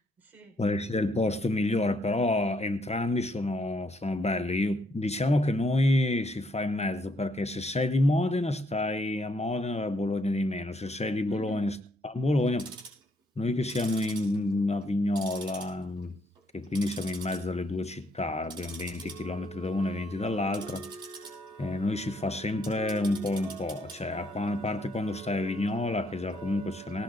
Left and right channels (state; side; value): normal; both; correlation 0.71